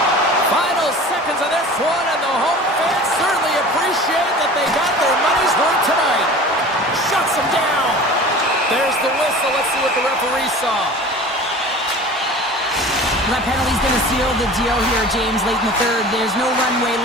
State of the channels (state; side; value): normal; both; correlation 0.40